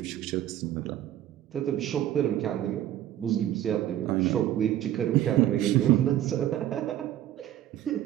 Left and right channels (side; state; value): left; quieter; 12.4 dB